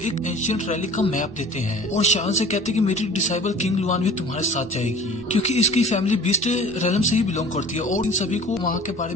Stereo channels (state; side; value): normal; both; correlation 0.45